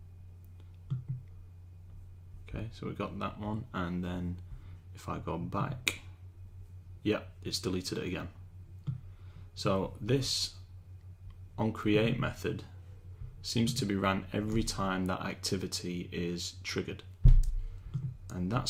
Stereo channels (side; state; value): both; identical; correlation 1.00